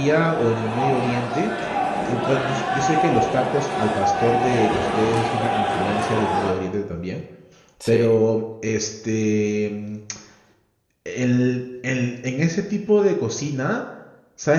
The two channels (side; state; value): both; identical; correlation 1.00